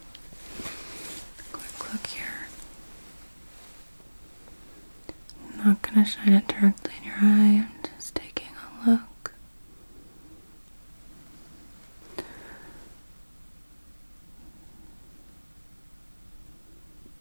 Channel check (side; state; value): both; inverted; correlation -1.00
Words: quick look here. I'm not going to shine it directly in your eye, I'm just taking a look.